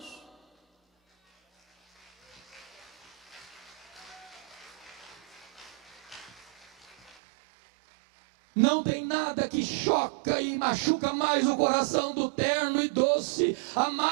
Não tem nada que choca e machuca mais o coração do terno e doce,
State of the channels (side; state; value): left; drops out; at 7.2 s